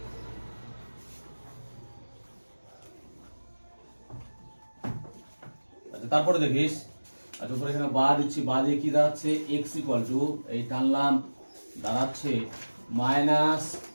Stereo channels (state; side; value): inverted; both; correlation -1.00